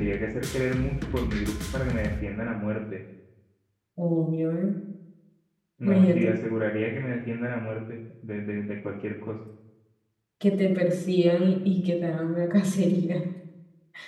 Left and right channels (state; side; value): identical; both; correlation 1.00